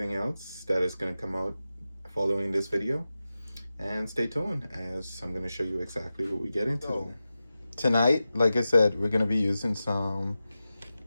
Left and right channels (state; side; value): inverted; both; correlation -0.93